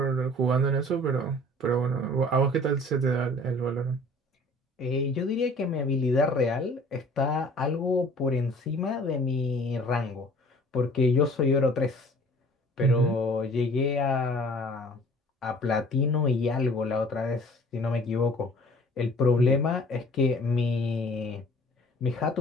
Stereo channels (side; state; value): both; normal; correlation 0.50